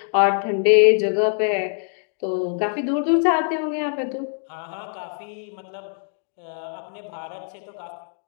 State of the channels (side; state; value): right; silent; 63 dB below the other